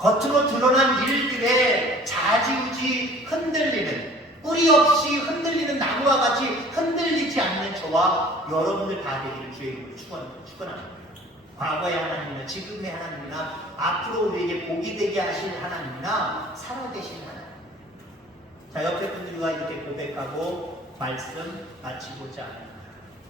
드러난 일들에 좌지우지 흔들리는 뿌리 없이 흔들리는 나무와 같이 흔들리지 않는 저와 여러분들 다 되기를 주의 이름으로 축원합니다. 과거의 하나님이나 지금의 하나님이나 앞으로 우리에게 복이 되게 하실 하나님이나 살아계신 하나님. 자, 옆에 분들과 이렇게 고백하고 말씀 마치고자 합니다.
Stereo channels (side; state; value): both; normal; correlation 0.49